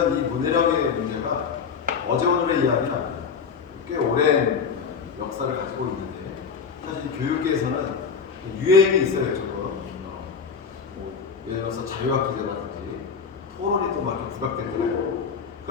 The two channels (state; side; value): quieter; right; 6.1 dB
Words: 이 문해력의 문제가 어제 오늘의 이야기는 아닙니다. 꽤 오랜 역사를 가지고 있는데 사실 교육계에서는 유행이 있어요. 조금 예를 들어서 자유학 기제라든지 토론이 또 막 이렇게 부각될 때가 있고,